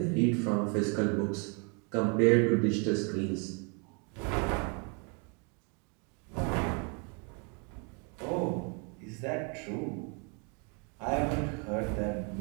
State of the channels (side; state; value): left; quieter; 35.4 dB